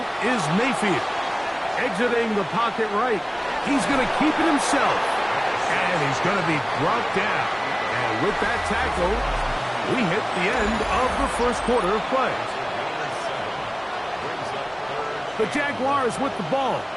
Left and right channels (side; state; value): both; identical; correlation 1.00